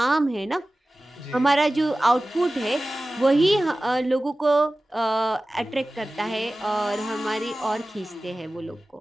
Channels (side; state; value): both; normal; correlation 0.97